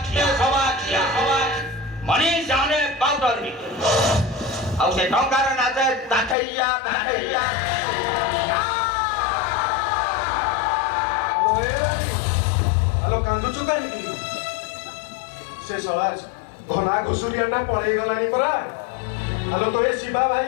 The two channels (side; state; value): right; drops out; at 6.4 s